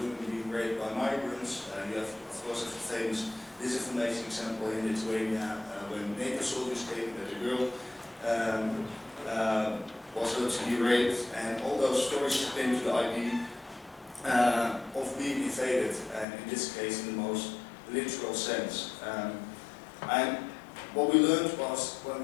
women being raped by migrants. You have, of course, a famous disinformation example in Lithuania when NATO soldiers came, that a girl was able to be raped, and all those stories came to the idea of being invaded, and in this case in the most literal sense. And what we learned was when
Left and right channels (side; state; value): right; drops out; at 16.2 s